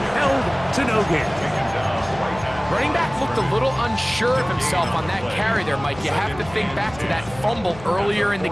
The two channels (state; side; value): noise; left; hum, 17 dB below the sound